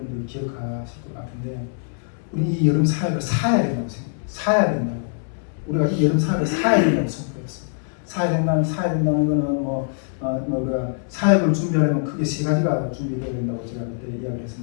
기억하실 것 같은데, 우리 이 여름 사역을 사야 된다고 생각해요. 사야 된다고. 우리가 이 여름 사역을 사야 된다고 선포했어요. 사야 된다는 거는 우리가 사역을 준비하려면 크게 세 가지가 준비되어야 된다고 제가 그때 이야기를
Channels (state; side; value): silent; right; digital silence